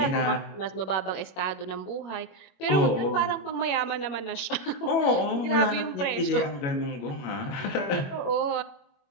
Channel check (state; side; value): late; right; 21 ms